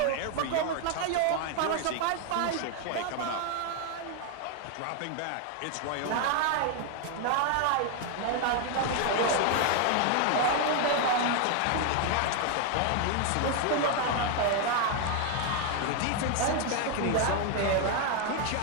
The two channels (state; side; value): different; both; correlation 0.01